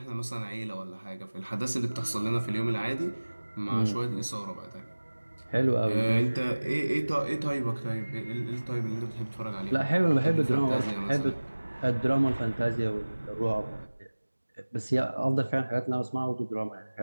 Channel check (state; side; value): inverted; both; correlation -1.00